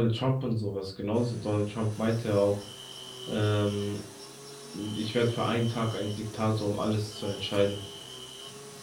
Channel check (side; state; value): both; identical; correlation 1.00